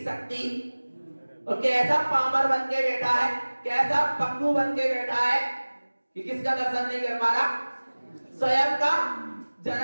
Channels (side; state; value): both; inverted; correlation -1.00